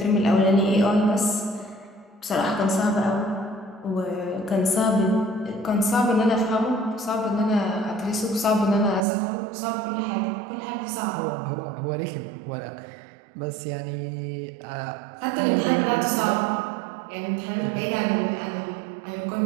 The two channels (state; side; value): drops out; left; at 9.1 s